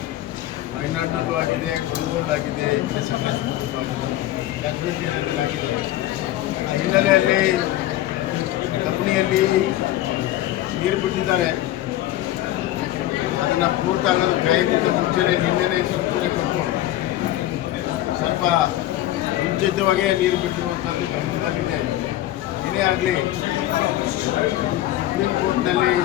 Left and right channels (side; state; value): right; quieter; 14.4 dB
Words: ಮಲೆನಾಡಿನಲ್ಲೂ ಆಗಿದೆ, ಕೊಡಗಲ್ಲೂ ಈ ಕಡೆ ಸಕಲೇಶಪುರದಲ್ಲೂ ಆಗಿದೆ, ಕಾಶ್ಮೀರ ಏರಿಯಾದಲ್ಲಿ ಆಗಿದೆ. ಆ ಹಿನ್ನೆಲೆಯಲ್ಲಿ ಕಬಿನಿಯಲ್ಲಿ ನೀರು ಬಿಟ್ಟಿದ್ದಾರೆ. ಅದನ್ನು ಪೂರ್ತಿ ಆಗೋದು ಕಾಯೋಕ್ಕಿಂತ ಮುಂಚೆನೇ ನಿನ್ನೆನೇ ಸೂಚನೆ ಕೊಟ್ಟು ಸ್ವಲ್ಪ ಮುಂಚಿತವಾಗೇ ನೀರು ಬಿಟ್ಟಿರುವಂಥದ್ದು ಗಮನದಲ್ಲಿದೆ. ಏನೇ ಆಗಲಿ ಸುಪ್ರೀಂ ಕೋರ್ಟ್ನಲ್ಲಿ